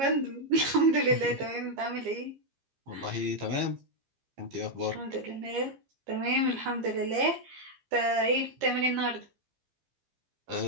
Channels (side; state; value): left; late; 15 ms